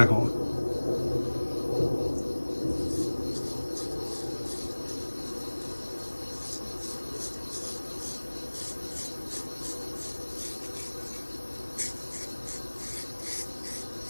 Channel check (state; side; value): inverted; both; correlation -1.00